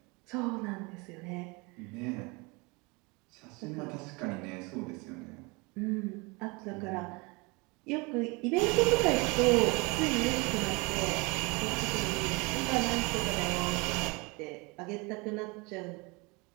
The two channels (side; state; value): left; quieter; 27.6 dB